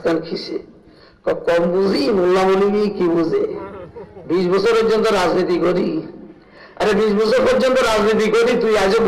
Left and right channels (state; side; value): identical; both; correlation 1.00